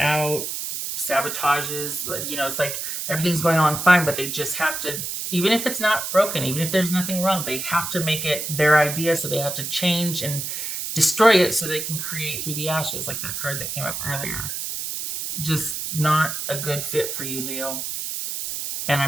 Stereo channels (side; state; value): right; noise; hiss, 4 dB below the sound